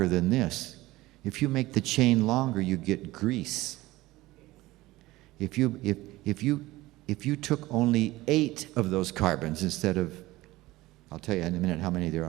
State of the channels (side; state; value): left; quieter; 18.5 dB